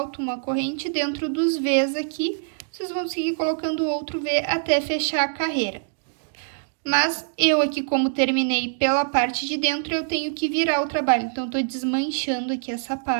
uma corrente dentro dos Vs aqui. Vocês vão seguir colocando outro V até fechar a carreira. Mas eu aqui, como terminei pela parte de dentro, eu tenho que virar o trabalho. Então, eu tô desmanchando aqui essa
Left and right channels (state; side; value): silent; left; digital silence